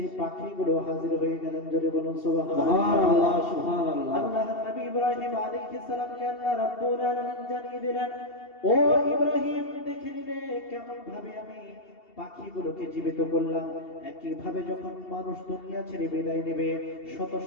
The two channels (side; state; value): right; late; 2.7 ms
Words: পাখিগুলো হাজির হয়ে গেলেন। জোরে বলুন সুবহানাল্লাহ, সুবহানাল্লাহ। আল্লাহর নবী ইব্রাহিম আলাইহিস সালামকে আল্লাহ রাব্বুল আলামিন জানিয়ে দিলেন, ও ইব্রাহিম, দেখে নিলে কেমন ভাবে আমি পাখিগুলোকে জীবিত করলাম। একই ভাবে যখন মানুষ দুনিয়া ছেড়ে বিদায় নেবে, শত